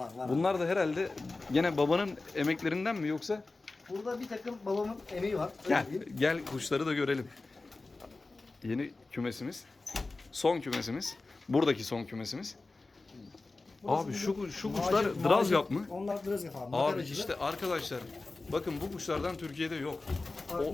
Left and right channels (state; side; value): quieter; right; 3.4 dB